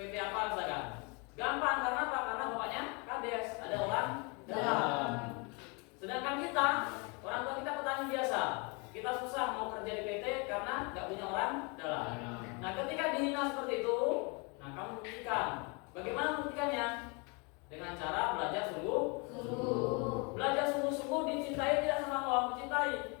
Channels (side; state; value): right; quieter; 31.6 dB